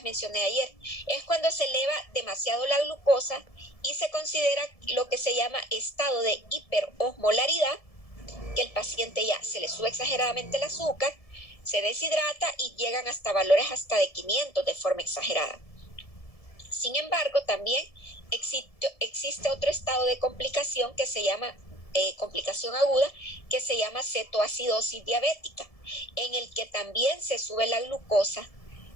mencioné ayer. Es cuando se eleva demasiado la glucosa y se considera lo que se llama estado de hiperosmolaridad, que el paciente ya se le sube exageradamente el azúcar, se deshidrata y llegan hasta valores hasta de 500 de forma exagerada. Sin embargo, también existe otro estado de complicación que se llama complicación aguda, que se llama cetoacidosis diabética, en el que también se sube la glucosa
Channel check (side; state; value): right; late; 1.7 ms